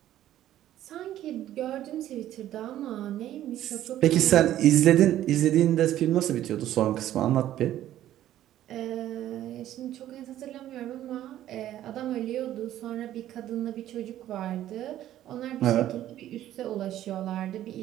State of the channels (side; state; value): left; quieter; 12.7 dB